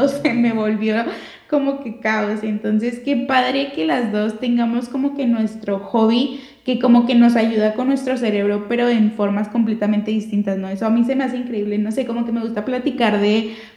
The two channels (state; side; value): identical; both; correlation 1.00